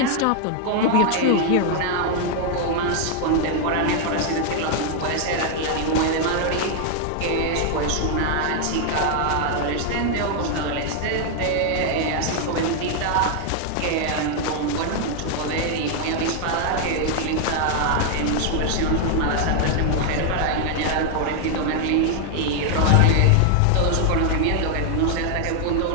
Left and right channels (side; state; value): both; different; correlation 0.00